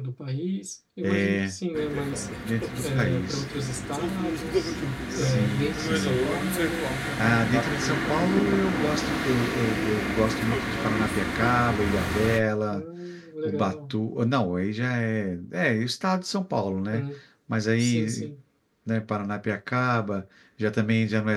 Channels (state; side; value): identical; both; correlation 1.00